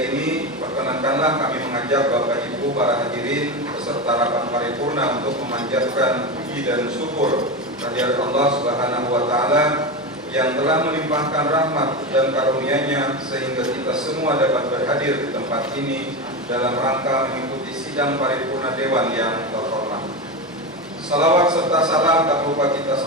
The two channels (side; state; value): both; normal; correlation 0.18